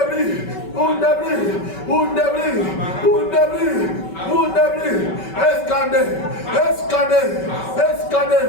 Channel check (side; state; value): right; late; 5.2 ms